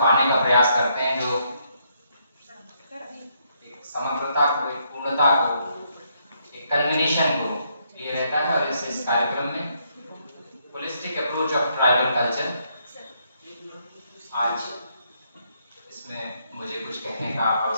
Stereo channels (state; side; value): inverted; both; correlation -0.74